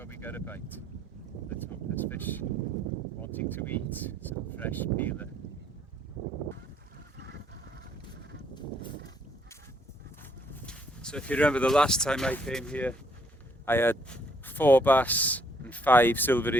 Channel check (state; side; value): normal; both; correlation 0.67